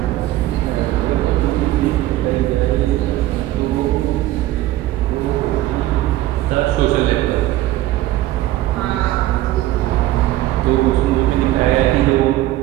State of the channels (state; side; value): quieter; left; 15.3 dB